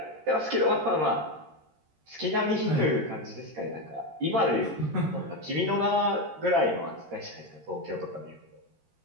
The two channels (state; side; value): late; left; 13 ms